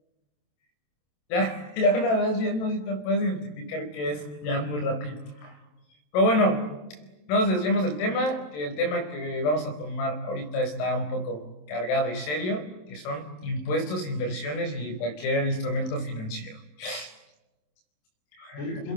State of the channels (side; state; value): right; late; 27 ms